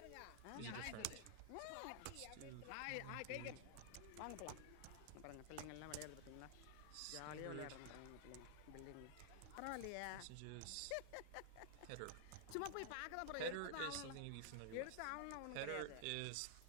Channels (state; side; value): different; both; correlation -0.01